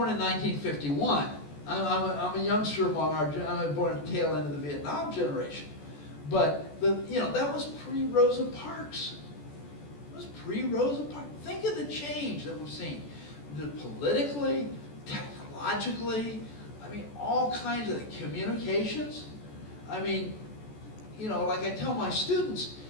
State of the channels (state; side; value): late; right; 14 ms